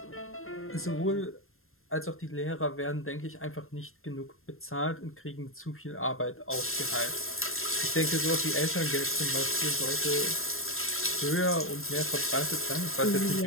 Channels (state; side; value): late; right; 0.61 ms